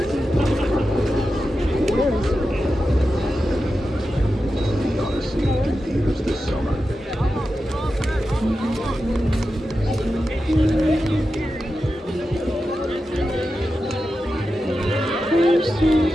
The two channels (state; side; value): normal; both; correlation 0.91